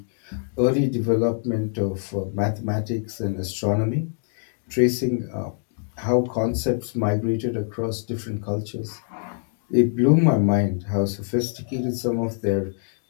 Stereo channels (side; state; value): right; silent; digital silence